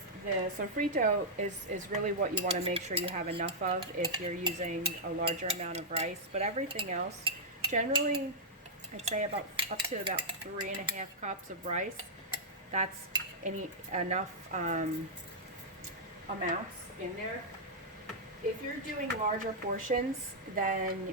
sofrito is really what you want to make sure you have enough of if you're using a larger amount of rice. But everything else, generally, I'd say up to about 3.5 cups of rice. That's enough amounts in there. If you're doing larger portions,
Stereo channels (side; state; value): both; normal; correlation -0.08